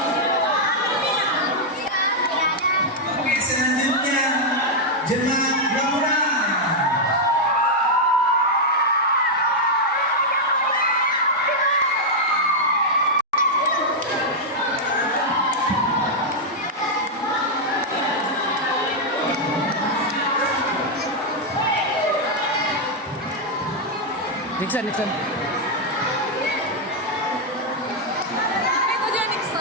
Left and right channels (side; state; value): both; normal; correlation -0.02